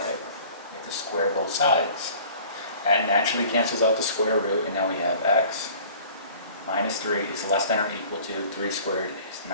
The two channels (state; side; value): inverted; both; correlation -0.48